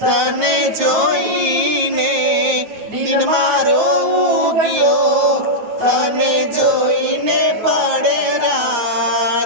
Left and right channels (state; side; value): late; left; 9.2 ms